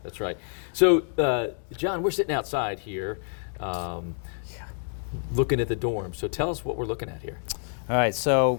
That's right. So, John, we're sitting outside here, looking at the dorm. So, tell us what we're looking at here. All right.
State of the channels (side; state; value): right; silent; 60 dB below the other